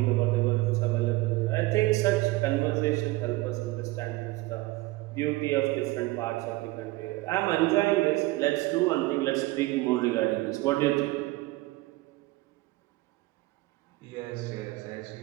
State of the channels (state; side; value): quieter; left; 20.2 dB